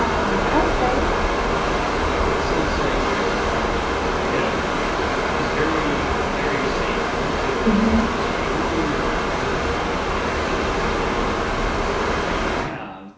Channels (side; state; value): both; identical; correlation 1.00